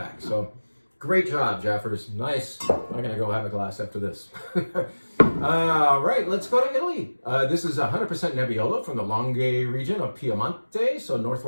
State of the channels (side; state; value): both; inverted; correlation -1.00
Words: So great job, Jeffers. Nice. I'm gonna go have a glass after this. All right, let's go to Italy. This is 100% Nebbiolo from the Langhe region of Piemonte, so